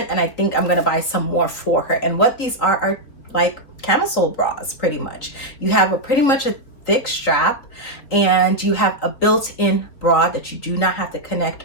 And I think I'm going to buy some more for her. And what these are like camisole bras, pretty much. You have pretty much a thick strap and you have a built-in bra that you do not have to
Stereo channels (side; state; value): right; late; 4.2 ms